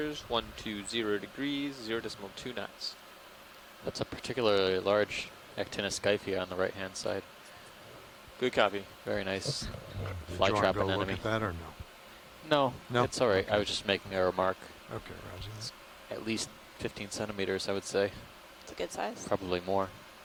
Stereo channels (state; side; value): identical; both; correlation 1.00